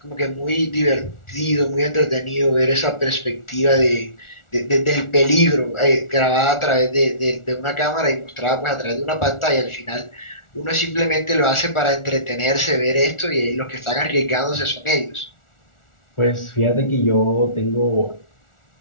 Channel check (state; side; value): late; right; 1.4 ms